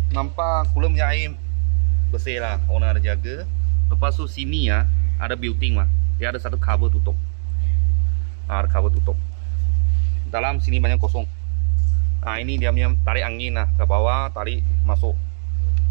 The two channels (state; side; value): silent; left; digital silence